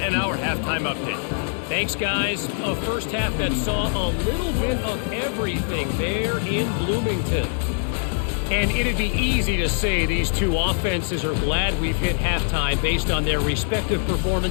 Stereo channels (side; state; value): right; silent; 60 dB below the other